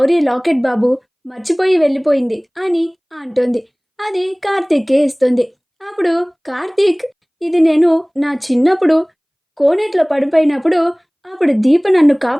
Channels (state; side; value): identical; both; correlation 1.00